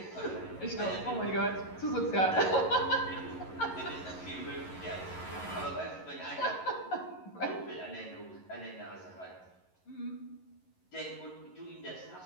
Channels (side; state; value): right; late; 11 ms